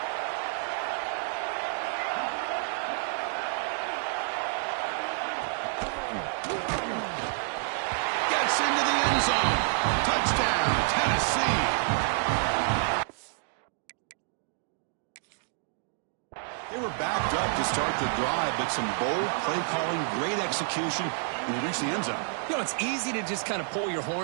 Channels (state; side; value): silent; left; digital silence